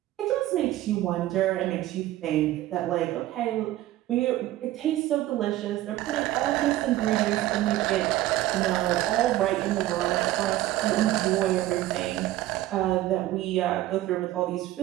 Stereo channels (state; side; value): quieter; left; 15.1 dB